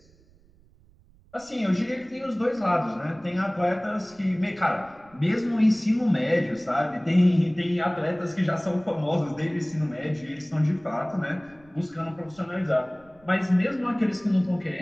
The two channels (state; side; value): noise; right; rumble, 29 dB below the sound